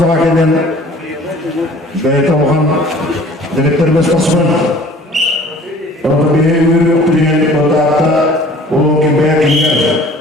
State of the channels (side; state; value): both; normal; correlation 0.50